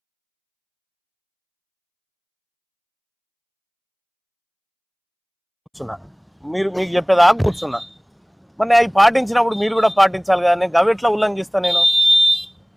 కూర్చున్నా మీకు చెప్పేదాకా కూర్చున్నా మరి అవి పాటించినప్పుడు మీరు కూడా పాటించాలి కానీ గవి ఉల్లంఘిస్తా నేను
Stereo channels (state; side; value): identical; both; correlation 1.00